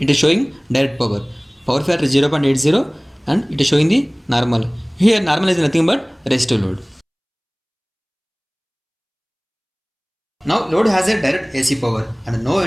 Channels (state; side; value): identical; both; correlation 1.00